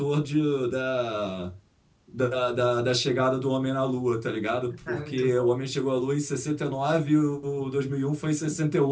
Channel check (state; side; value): identical; both; correlation 1.00